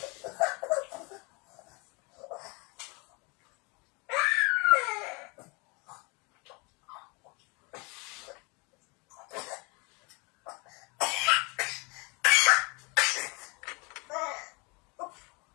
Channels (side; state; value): right; quieter; 29.7 dB